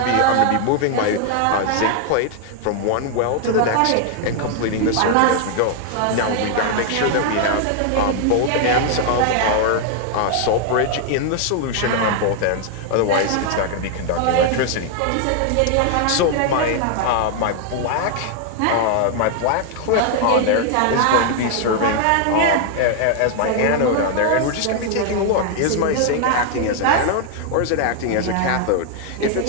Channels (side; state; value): both; different; correlation 0.00